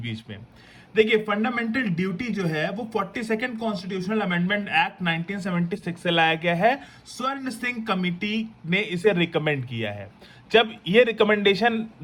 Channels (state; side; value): identical; both; correlation 1.00